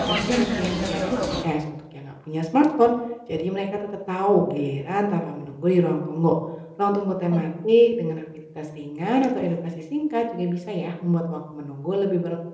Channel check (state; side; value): identical; both; correlation 1.00